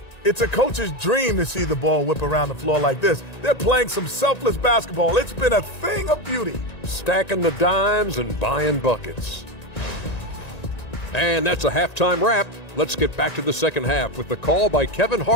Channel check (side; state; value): right; late; 1.9 ms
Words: It's a coach's dream to see the ball whip around the floor like this. They're playing some selfless basketball. It's been a thing of beauty. Stacking the dimes and buying buckets. And that's a halftime wrap. Let's get back to the second half with the call by Kevin